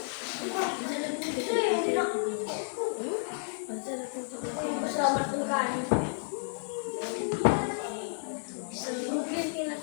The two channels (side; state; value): right; silent; digital silence